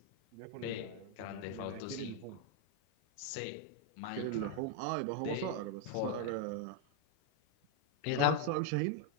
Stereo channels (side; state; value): both; different; correlation 0.00